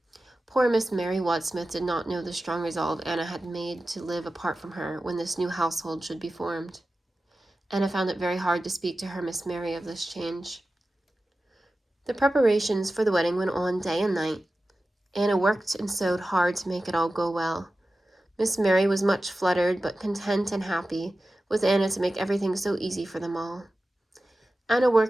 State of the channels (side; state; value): both; normal; correlation 0.94